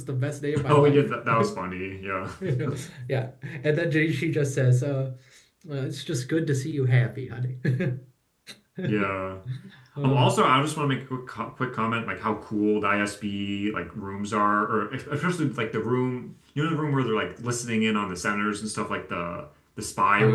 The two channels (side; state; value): both; identical; correlation 1.00